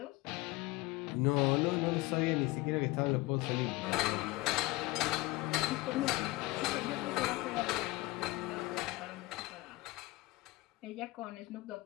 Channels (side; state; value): right; quieter; 20.9 dB